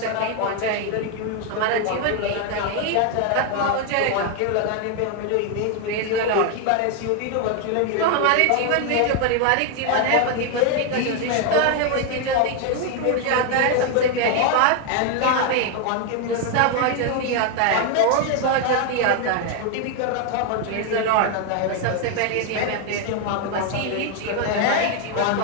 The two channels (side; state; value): both; different; correlation 0.01